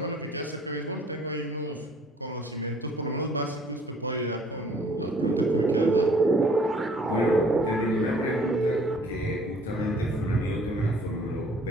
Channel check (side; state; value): both; normal; correlation 0.57